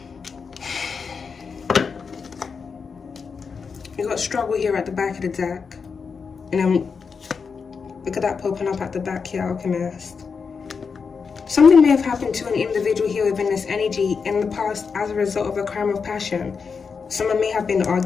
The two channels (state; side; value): quieter; right; 5.6 dB